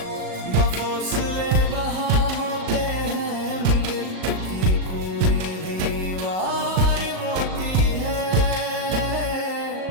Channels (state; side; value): late; left; 37 ms